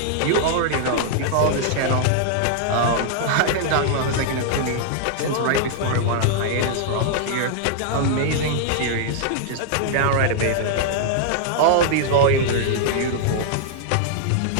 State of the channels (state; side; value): different; both; correlation -0.01